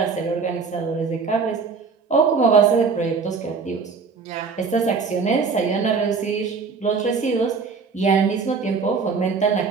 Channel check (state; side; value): quieter; left; 5.1 dB